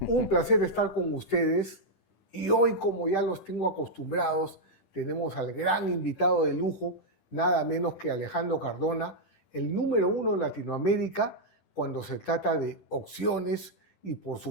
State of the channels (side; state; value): right; late; 10 ms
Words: un placer estar con ustedes y hoy, como ya los tengo acostumbrados, tenemos al gran invitado de lujo, nada menos que Alejandro Cardona, el número 1 en Latinoamérica cuando se trata de opciones y por